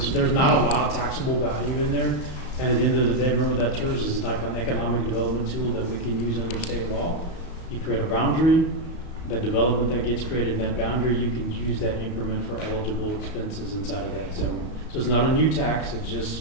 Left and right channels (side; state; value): right; late; 34 ms